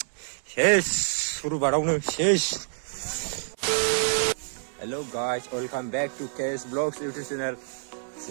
सेस सुरुबारावनो सेस hello guys welcome back to K S blogs YouTube channel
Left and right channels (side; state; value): left; silent; 60 dB below the other